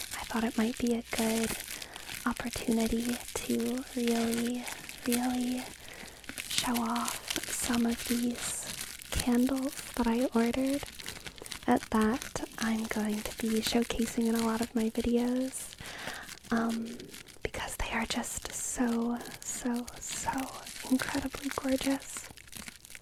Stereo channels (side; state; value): both; identical; correlation 1.00